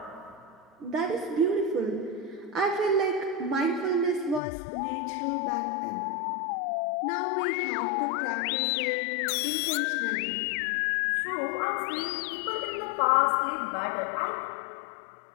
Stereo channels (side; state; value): right; drops out; at 4.4 s